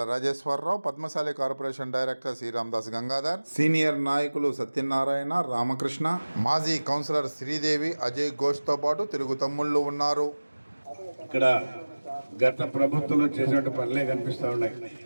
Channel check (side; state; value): both; inverted; correlation -1.00